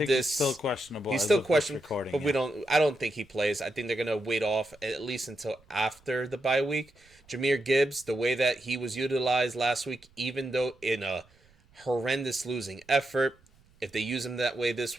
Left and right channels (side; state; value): right; noise; rumble, 30 dB below the sound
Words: this, he's still questionable. He's as still of this questionable, recording, but I don't think he plays. I think they're going to wait off at least until after the bye week. Jahmyr Gibbs, the way that he was utilized last week, even though in a horrendous losing effort, if they use him that way this